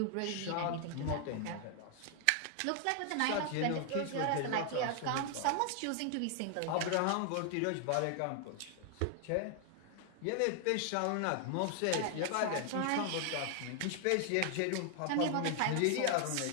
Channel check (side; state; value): both; different; correlation 0.00